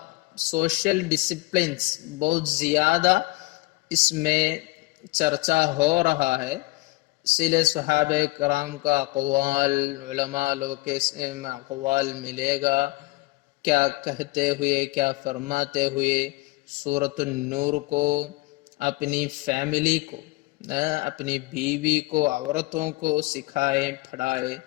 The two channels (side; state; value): right; quieter; 23.4 dB